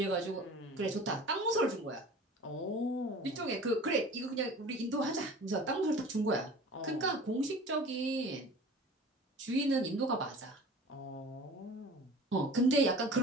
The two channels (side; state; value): both; normal; correlation 0.42